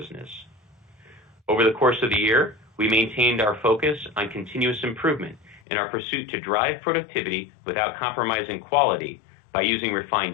Over the course of the year, we maintained our focus on continuous improvement in our pursuit to drive productivity without compromising quality by using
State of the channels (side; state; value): right; drops out; at 5.6 s